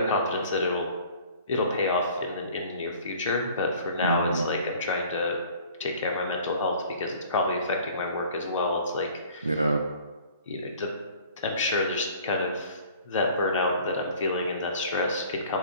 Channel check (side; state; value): both; inverted; correlation -0.49